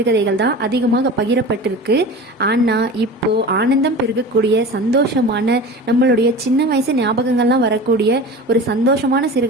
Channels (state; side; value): normal; both; correlation 0.34